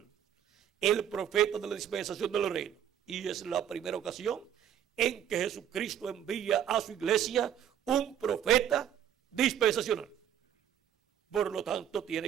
el profeta de la dispensación del reino. Y es la primera ocasión en que Jesucristo envía a su iglesia un profeta dispensacional. Por lo tanto,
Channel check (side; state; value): left; quieter; 9.9 dB